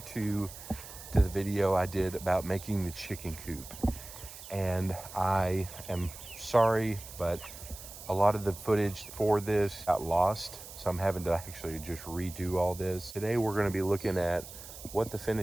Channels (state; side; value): noise; right; hiss, 14 dB below the sound